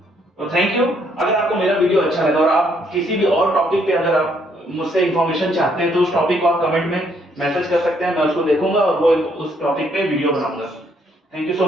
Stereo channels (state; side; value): normal; both; correlation 0.70